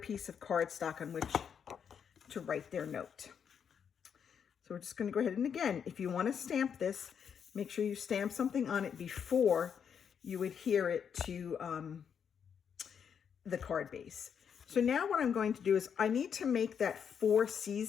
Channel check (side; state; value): right; quieter; 7.5 dB